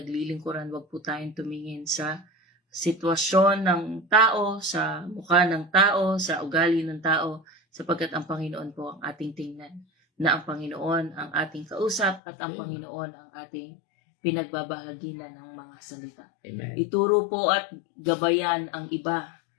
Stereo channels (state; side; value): drops out; right; at 12.2 s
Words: Huwag po tayong tumingin sa sitwasyon ng tao, sa mukha ng tao, sa ugali ng tao, sapagkat ang Panginoon po ang ating tingnan, na ang Panginoon ang ating kausap at ang Panginoon ang ating pinagbabahagi na ng mga salita. Amen. Ituro po at gabayan ang iba.